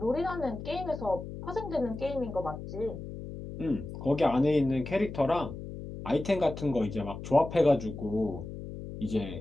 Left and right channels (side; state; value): left; noise; hum, 10 dB below the sound